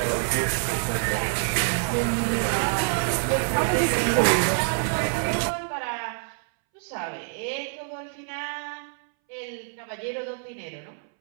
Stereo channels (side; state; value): left; silent; 61 dB below the other